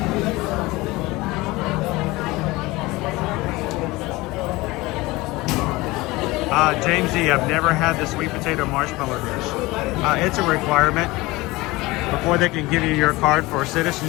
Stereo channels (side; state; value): right; quieter; 21.1 dB